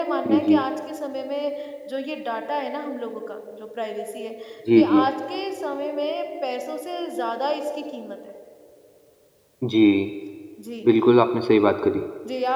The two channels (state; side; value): identical; both; correlation 1.00